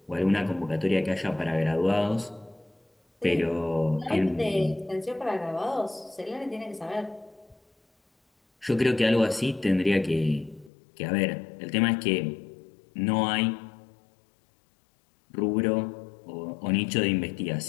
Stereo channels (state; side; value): drops out; right; at 10.7 s